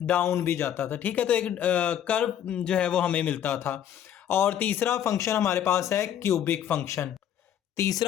डाउन भी जाता था, ठीक है। तो एक कर्व जो है वो हमें मिलता था। और तीसरा फंक्शन हमारे पास है क्यूबिक फंक्शन।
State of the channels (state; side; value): quieter; right; 10.0 dB